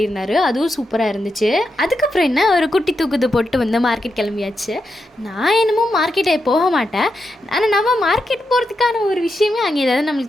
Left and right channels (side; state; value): both; normal; correlation 0.86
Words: அதுவும் சூப்பராக இருந்துச்சு. அதுக்கப்புறம் என்ன, ஒரு குட்டி தூக்குது போட்டு மார்க்கெட் கிளம்பியாச்சு. நான் என்னமோ மார்க்கெட்டை போக மாட்டேன், ஆனால் நம்ம மார்க்கெட் போகிறதுக்கான ஒரு விஷயமே அங்கே ஏதாவது